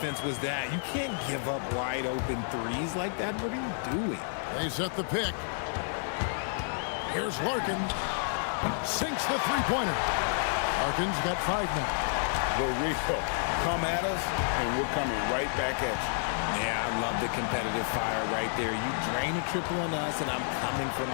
was that? You can't give up wide open threes like that. What are you doing? They set the pick. Here's Larkin. Sinks the three-pointer. Larkin's got 5 now. Barrio, come at us, and we're coming right back at you. Yeah, I love the competitive fire right there. You drain a triple on us, and I'm coming for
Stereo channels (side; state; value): right; silent; digital silence